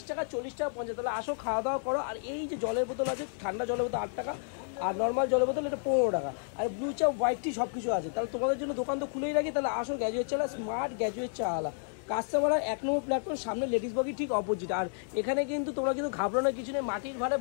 টাকা, 40 টাকা, 50। তাহলে আসো খাওয়া দাওয়া করো। আর এই যে জলের বোতল আছে, ঠান্ডা জলের বোতল 8 টাকা, আর নর্মাল জলের বোতল এটা 15 টাকা। আর ব্লু চা, হোয়াইট টি সব কিছু আছে। তাহলে তোমাদের জন্য দোকান তো খুলেই রাখি। তাহলে আসো গ্র্যাজুয়েট চা, স্মার্ট গ্র্যাজুয়েট চা আলা কাস্টমার 1 নম্বর প্ল্যাটফর্ম, সামনে লেডিস বগি ঠিক অপোজিট। আর এখানে কিন্তু তোমরা কিন্তু ঘাবড়ানোর কিছু নেই। মাটির ভাড়ে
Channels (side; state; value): right; silent; digital silence